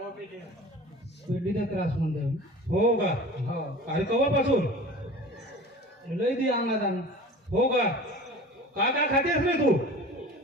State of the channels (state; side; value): normal; both; correlation 0.39